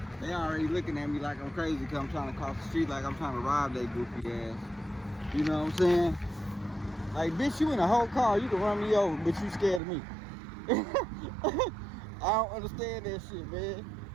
They already looking at me like I'm crazy because I'm trying to cross the street, like I'm trying to rob their goofy ass. You know what I'm saying? Like, bitch, you in a whole car, you can run me over, but you scared of me. I don't understand that shit, man.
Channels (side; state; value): left; drops out; at 9.8 s